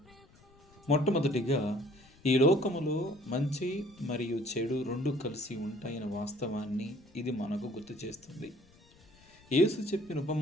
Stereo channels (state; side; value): noise; left; rumble, 27 dB below the sound